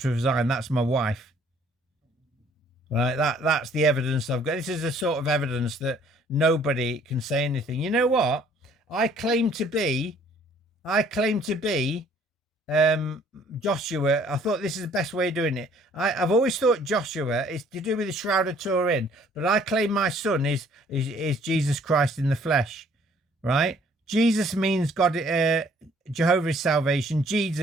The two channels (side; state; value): both; normal; correlation 0.59